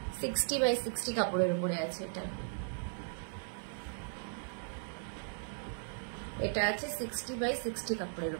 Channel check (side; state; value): left; silent; digital silence